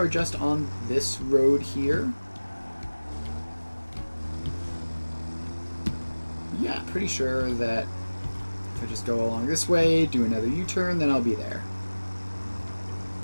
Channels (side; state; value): both; inverted; correlation -1.00